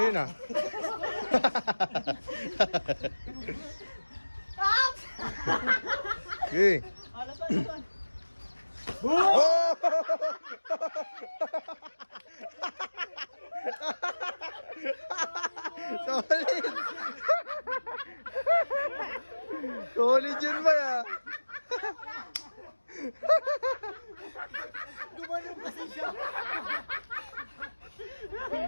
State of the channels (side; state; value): both; inverted; correlation -1.00